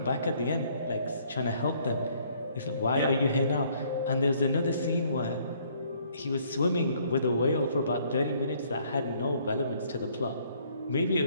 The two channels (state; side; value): inverted; both; correlation -0.63